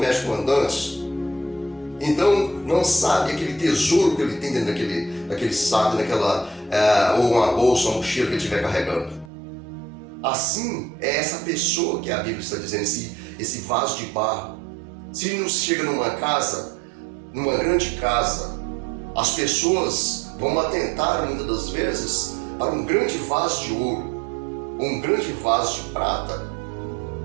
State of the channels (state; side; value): drops out; left; at 9.2 s